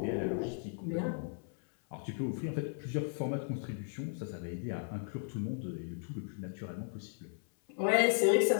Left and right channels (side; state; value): right; silent; 54 dB below the other